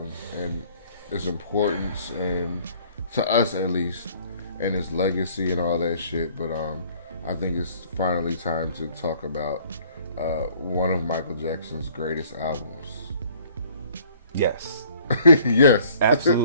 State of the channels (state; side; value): inverted; both; correlation -0.57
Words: and its importance, and to us at least, and its legacy and all that shit. But I think it's finally time to talk about one of Michael Jackson's greatest albums. Yes. Yes.